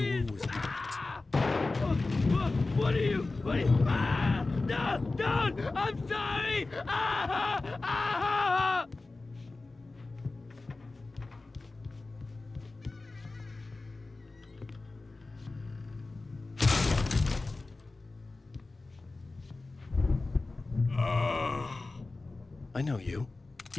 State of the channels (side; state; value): right; quieter; 3.4 dB